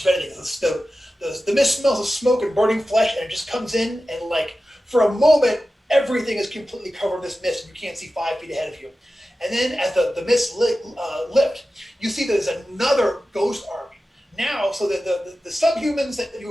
of anything. The mist smells of smoke and burning flesh, and it just comes in, and for a moment everything is completely covered in this mist, and you can't see 5 feet ahead of you. And then as the mist lift, you see there's another ghost army now. So the subhumans that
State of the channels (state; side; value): normal; both; correlation 0.94